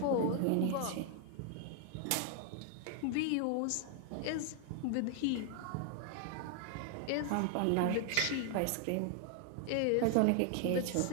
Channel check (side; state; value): both; different; correlation 0.00